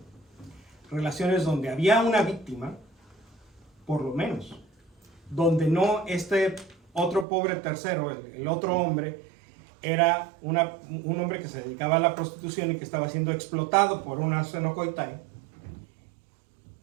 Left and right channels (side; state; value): left; drops out; at 7.2 s